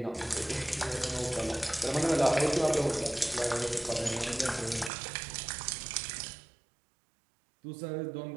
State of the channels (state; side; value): drops out; left; at 4.9 s